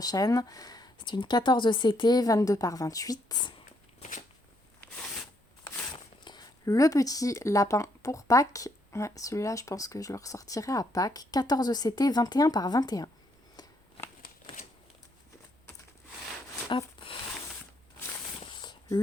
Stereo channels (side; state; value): both; normal; correlation 0.73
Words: C'est une 14 CT, 22 par 28. Le petit lapin pour Pâques. Ouais, celui-là, je pense que je le ressortirai à Pâques. 14 CT, 21 par 21. Hop.